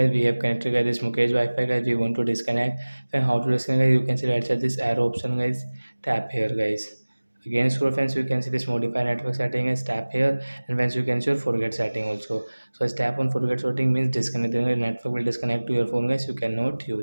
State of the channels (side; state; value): both; inverted; correlation -1.00